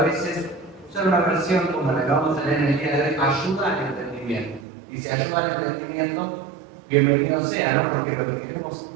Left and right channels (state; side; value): drops out; left; at 4.7 s